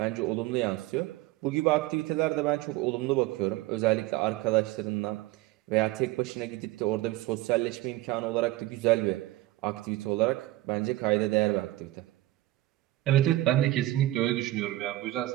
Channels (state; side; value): quieter; left; 17.0 dB